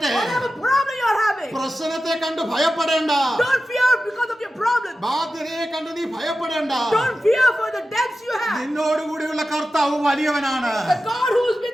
whatever problem you are having, പ്രശ്നത്തെ കണ്ട് ഭയപ്പെടേണ്ട. don't fear because of your problem. ബാധ്യതയെ കണ്ട് നീ ഭയപ്പെടേണ്ട. Don't fear for the debts you have. നിന്നോടുകൂടിയുള്ള കർത്താവ് വലിയവനാണ്. The God who is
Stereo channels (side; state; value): both; normal; correlation 0.93